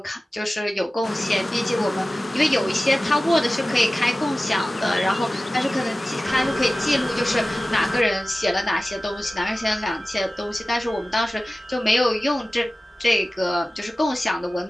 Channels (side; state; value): both; normal; correlation 0.96